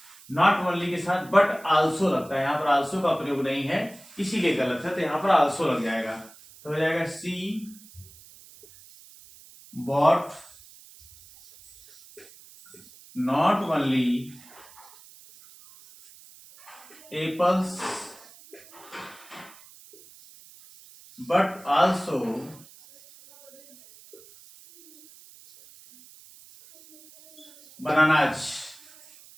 not only के साथ but also लगता है, यहाँ पर also का प्रयोग नहीं है इसीलिए गलत है, तो यहाँ पर also लग जाएगा। तो हो जाएगा she bought not only apples but also bananas।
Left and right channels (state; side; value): noise; right; hiss, 22 dB below the sound